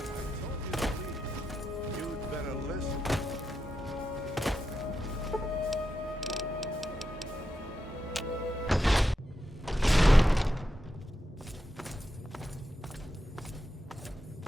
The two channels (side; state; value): both; normal; correlation 0.87